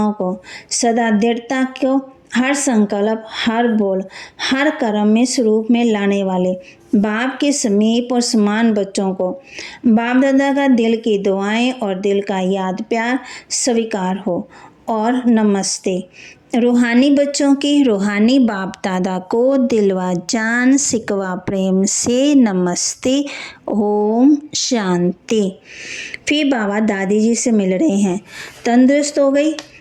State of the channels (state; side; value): identical; both; correlation 1.00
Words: को सदा दृढ़ता को हर संकल्प, हर बोल, हर कर्म में स्वरूप में लाने वाले बाप के समीप और समान बच्चों को बाप दादा का दिल की दुआएं और दिल का याद प्यार स्वीकार हो। और नमस्ते। रूहानी बच्चों के रूहानी बाप दादा को दिलवा जान सिकवा प्रेम से नमस्ते, ओम शांति। फिर बाबा दादी जी से मिल रहे हैं। तंदुरुस्त हो गई,